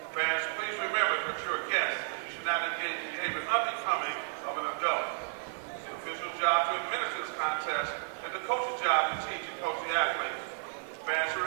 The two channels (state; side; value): silent; left; digital silence